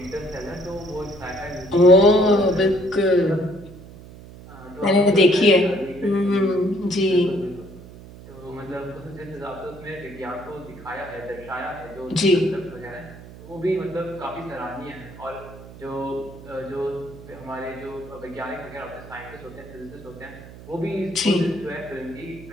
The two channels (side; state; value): right; noise; hum, 17 dB below the sound